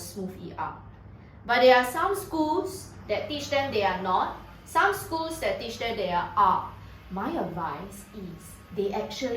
ER. But there are some schools that teach them they are not. Some schools that teach them they are. My advice is they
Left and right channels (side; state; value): both; identical; correlation 1.00